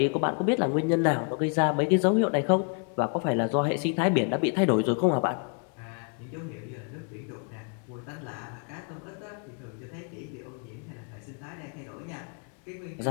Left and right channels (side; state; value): right; quieter; 38.9 dB